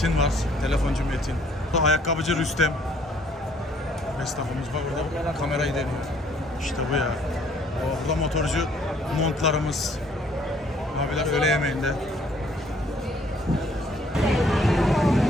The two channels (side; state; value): both; normal; correlation 0.62